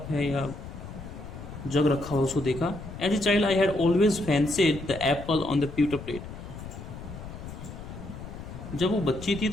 है या जग रखा हुआ, उसको देखा। As a child I had always fancied the apple on the pewter plate, जब वो बच्ची थी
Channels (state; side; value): noise; left; rumble, 11 dB below the sound